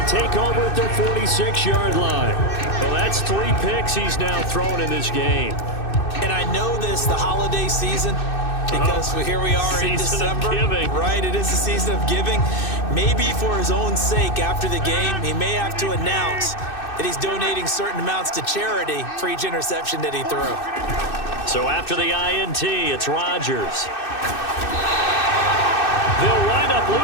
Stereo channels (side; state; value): right; late; 2.6 ms